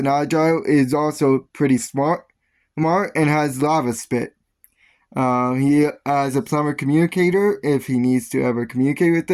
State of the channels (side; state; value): both; identical; correlation 1.00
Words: agile, is also pretty smart, and has lava spit. He has a plumber communicator if he needs to ever communicate with